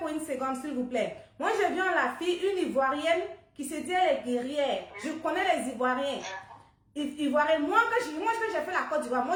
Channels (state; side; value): identical; both; correlation 1.00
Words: une seconde, s'il vous plaît. Moi, j'ai vu en la fille une Ivoirienne qui se dit elle est guerrière. Je connais les Ivoiriens. Ivoiriens. Moi, quand j'ai fait la Côte d'Ivoire, moi,